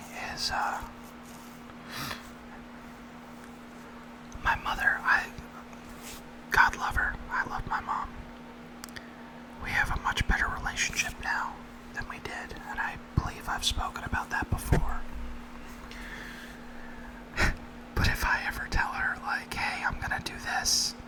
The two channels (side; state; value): both; identical; correlation 1.00